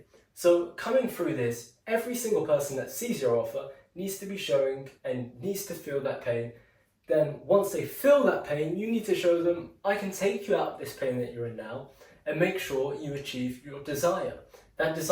So coming through this, every single person that sees your offer needs to be showing and needs to feel that pain. Then once they feel that pain, you need to show them, I can take you out of this pain that you're in now and make sure you achieve your desire. That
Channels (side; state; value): both; identical; correlation 1.00